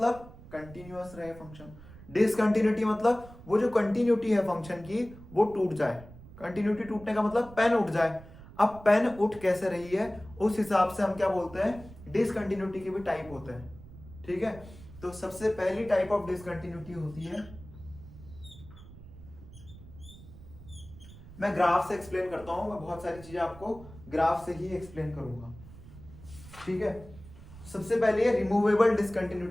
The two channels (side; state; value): right; noise; rumble, 18 dB below the sound